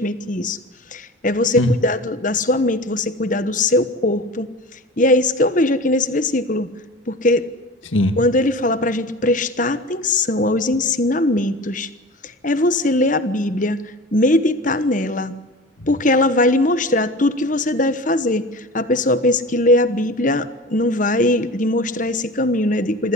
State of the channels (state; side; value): normal; both; correlation 0.35